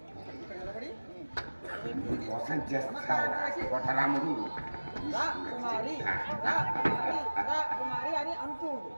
మోసం చేస్తావు కొట్టరాముడు. రా కుమారి అని అంటూ ఉండు.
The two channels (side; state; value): both; inverted; correlation -1.00